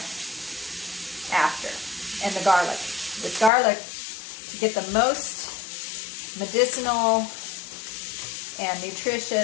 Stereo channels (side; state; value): right; drops out; at 3.5 s